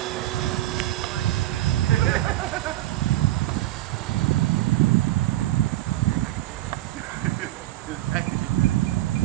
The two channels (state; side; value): quieter; left; 15.3 dB